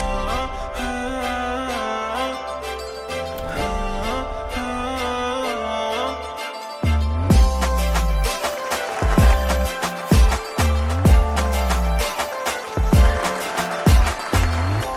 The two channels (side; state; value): both; identical; correlation 1.00